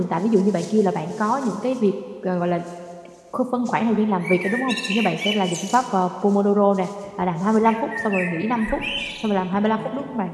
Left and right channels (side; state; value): both; identical; correlation 1.00